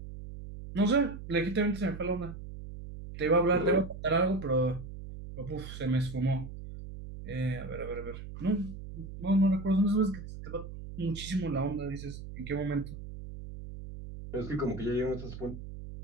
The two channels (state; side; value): noise; right; hum, 11 dB below the sound